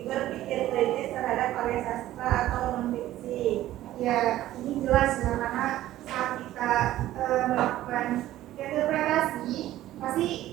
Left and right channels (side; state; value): left; quieter; 14.3 dB